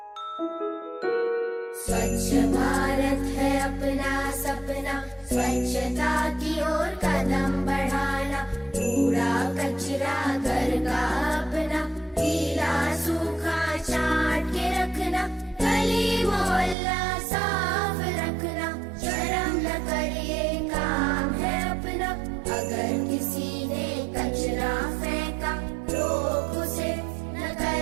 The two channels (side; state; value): left; drops out; at 16.8 s